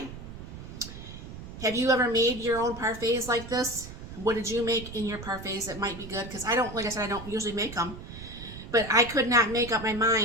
Have you ever made your own parfaits like this? What did you make in your parfaits that might be good? Because I don't, like I said, I don't usually make them. But I could not make up my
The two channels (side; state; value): right; noise; rumble, 12 dB below the sound